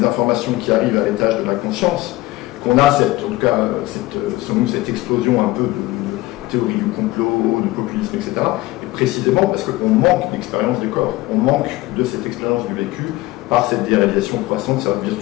informations qui arrivent à l'étage de la conscience qu'on a selon nous, cette explosion un peu de théorie du complot, de populisme, etc. Et précisément parce qu'on manque d'expérience des corps, on manque de cette expérience du vécu par cette déréalisation croissante, cette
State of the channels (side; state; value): right; quieter; 18.7 dB